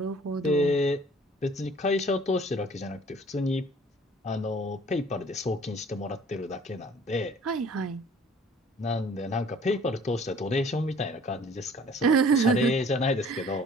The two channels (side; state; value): both; normal; correlation 0.53